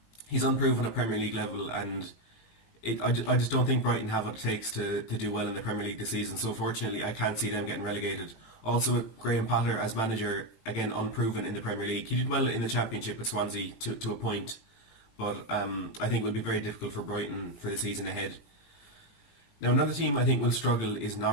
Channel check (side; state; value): right; late; 18 ms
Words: he's unproven at Premier League level, and I just don't think Brighton have what it takes to do well in the Premier League this season. So fortunately I can't see them getting relegated. Also with Graham Potter as manager, again unproven in the Premier League. He did well in the Championship with Swansea to a point, but I think it will be very difficult for Brighton for the season ahead. Now another team I think will struggle is